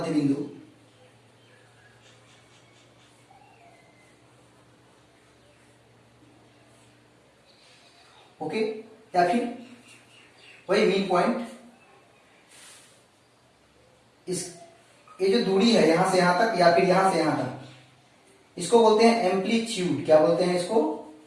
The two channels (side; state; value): both; identical; correlation 1.00